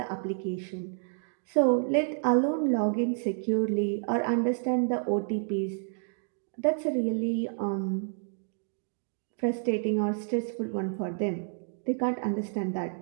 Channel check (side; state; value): left; silent; 58 dB below the other